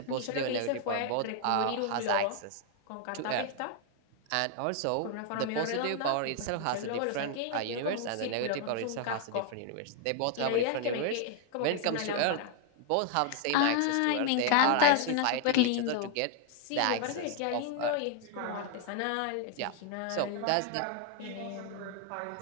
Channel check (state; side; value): different; both; correlation 0.00